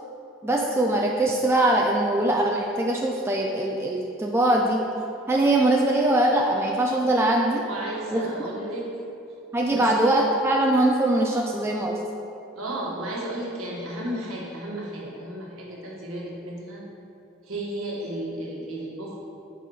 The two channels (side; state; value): both; normal; correlation 0.52